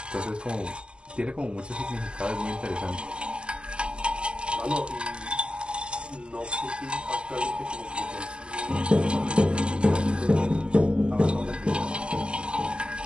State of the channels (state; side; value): late; left; 0.050 ms